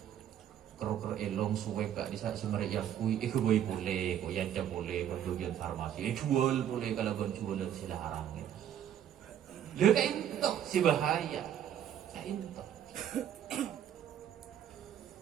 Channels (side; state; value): left; quieter; 10.2 dB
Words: kerok elong suwe kak di saat semerek yang kui boy boleh kok yang boleh bagian farmasi jual boleh kalau kan jual sila haram gitu lha kayak itu si bahaya kayak itu